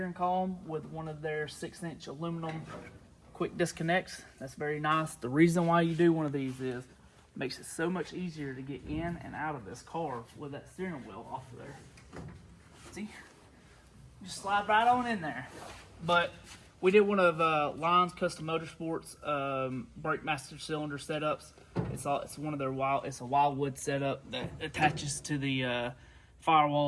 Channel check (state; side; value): identical; both; correlation 1.00